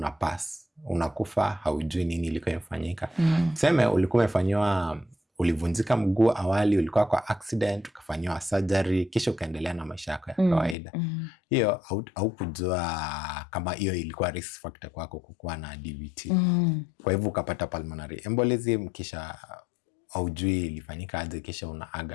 unakufa, haujui nini ilikuwa imefanyika. Tuseme ulikuwa umefanywa, ulivunjika mguu awali, ulikuwa kwa accident, ukafanywa surgery, kisha ukaendelea na maisha yako ya kawaida. Hiyo haukujua kama hiyo ilikuwa risk factor kwako kukuwa na DVT. Kwa hivyo ukapata pulmonary embolism, kisha haujui ilifanyika aje, kisha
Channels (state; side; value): drops out; right; at 10.8 s